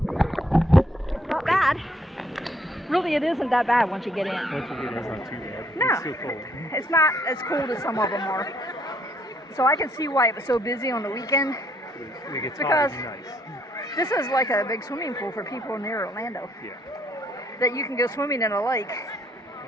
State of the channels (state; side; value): normal; both; correlation 0.67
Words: it's not bad. Really, it isn't that bad once you get in. Once you get in, it's not too bad. No, It's still cold. it's not as cold as some of them are. So I can see why it was so busy on the weekend. When it gets Because hot, it's nice. this is like a big swimming pool for people near Orlando. Yeah. That you can go swimming in a lake.